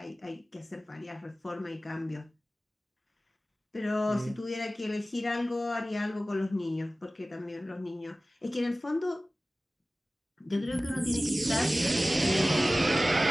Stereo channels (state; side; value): normal; both; correlation 0.96